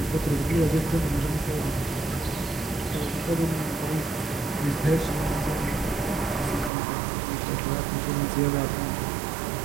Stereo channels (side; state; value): left; drops out; at 6.7 s